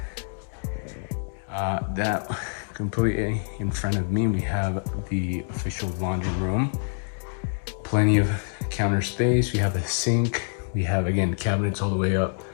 That completely in front of me, we have the official laundry room. Plenty of counter space. We have a sink. We have, again, cabinets all the way up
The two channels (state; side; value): silent; right; 61 dB below the other